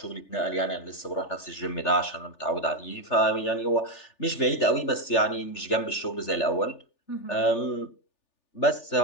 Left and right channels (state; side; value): late; right; 3.4 ms